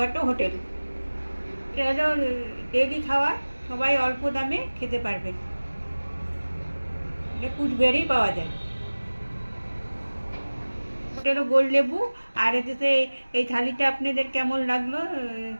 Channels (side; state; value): both; inverted; correlation -1.00